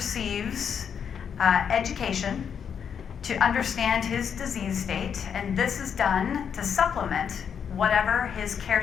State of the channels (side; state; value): right; quieter; 7.5 dB